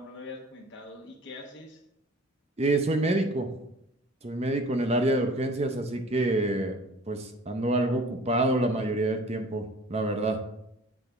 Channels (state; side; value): normal; both; correlation 0.47